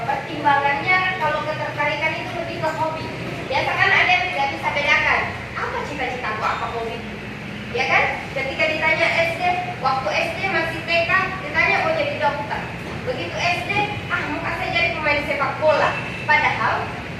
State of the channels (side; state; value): both; identical; correlation 1.00